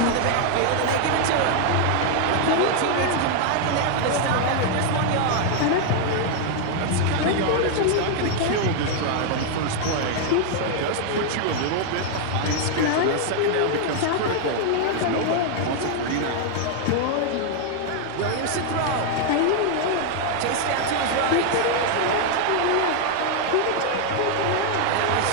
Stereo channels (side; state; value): both; different; correlation 0.00